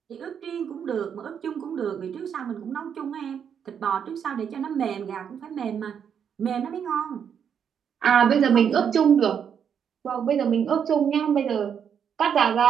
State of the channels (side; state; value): left; quieter; 7.8 dB